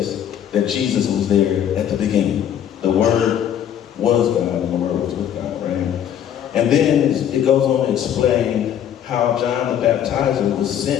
that Jesus was there at the beginning. The Word was God, and the Word was with God, right? And then it goes on to explain how John the Baptizer was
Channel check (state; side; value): quieter; right; 9.8 dB